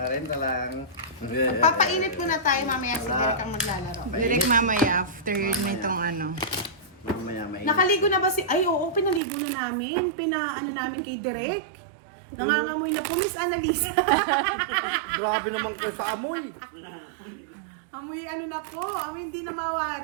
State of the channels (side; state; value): left; drops out; at 9.2 s